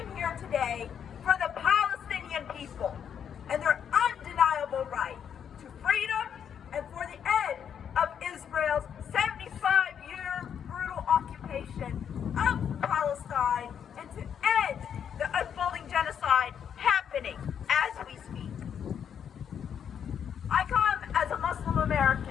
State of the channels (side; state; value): right; quieter; 8.2 dB